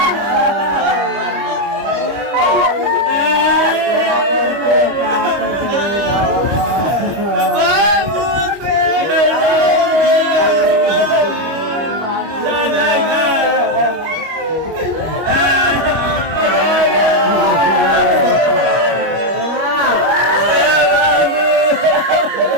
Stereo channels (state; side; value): late; left; 25 ms